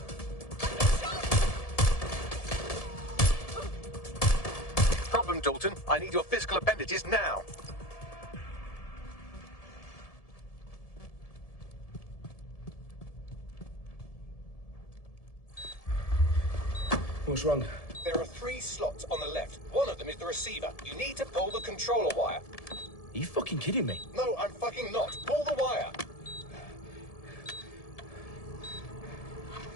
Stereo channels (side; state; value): right; late; 1.7 ms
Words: Problem, Dalton. I need your physical appendages now. What's wrong? There are 3 slots on the left. One of them is the receiver. You need to pull the controller wire. Are you fucking kidding me? No, I'm fucking not. Pull the wire.